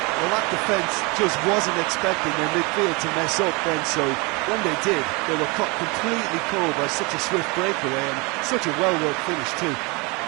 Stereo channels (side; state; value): left; quieter; 28.0 dB